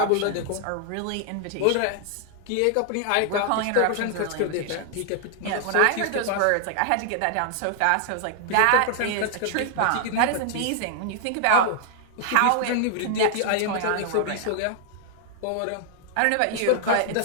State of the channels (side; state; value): both; different; correlation 0.00